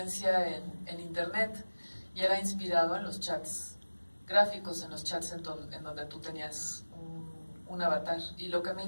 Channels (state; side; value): inverted; both; correlation -1.00